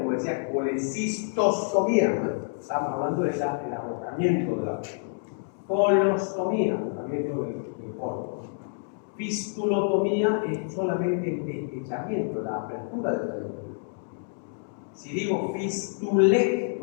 decía, colecistostomía, ¿no? Estamos hablando del agotamiento de la colostomía, agotamiento del colon. Fistulotomía es solamente el deslizamiento, la apertura del trayecto. Si digo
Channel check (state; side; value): silent; right; digital silence